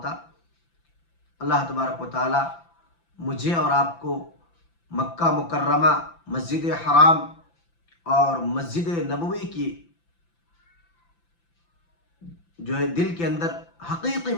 اللہ تبارک و تعالی مجھے اور آپ کو مکہ مکرمہ، مسجد حرام اور مسجد نبوی کی جو ہے دل کے اندر حقیقی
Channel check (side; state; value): right; late; 5.9 ms